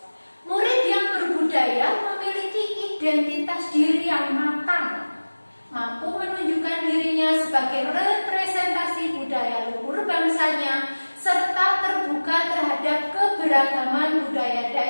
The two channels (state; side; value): inverted; both; correlation -1.00